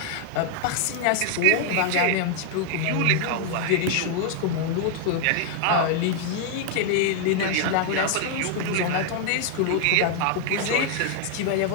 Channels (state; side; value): different; both; correlation 0.00